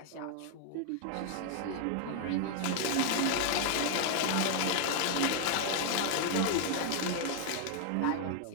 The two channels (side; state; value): both; different; correlation 0.00